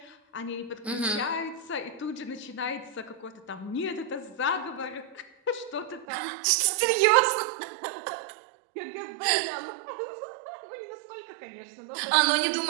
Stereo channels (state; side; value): drops out; left; at 6.1 s